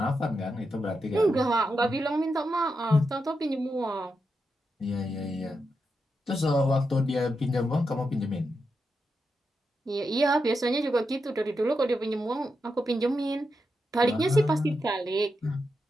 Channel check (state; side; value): normal; both; correlation 0.86